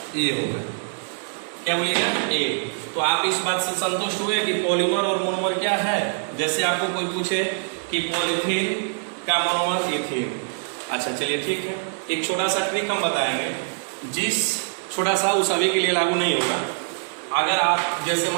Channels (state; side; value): silent; left; 63 dB below the other